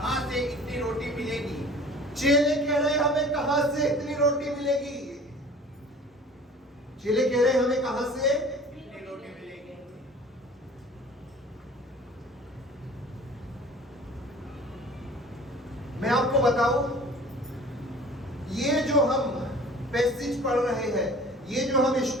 से इतनी रोटी मिलेगी। चेले कह रहे हमें कहां से इतनी रोटी मिलेगी। चेले कह रहे हमें कहां से इतनी रोटी मिलेगी। मैं आपको बताऊं, ये जो हम पैसेज पढ़ रहे हैं, ये जो हम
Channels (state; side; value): normal; both; correlation 0.45